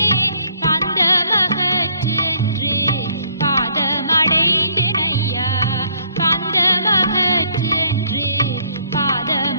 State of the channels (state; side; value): inverted; both; correlation -0.64